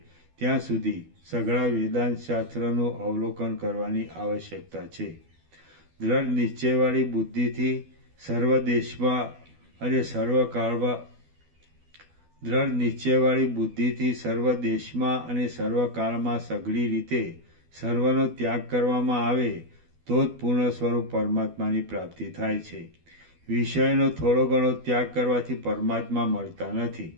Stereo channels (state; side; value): late; left; 12 ms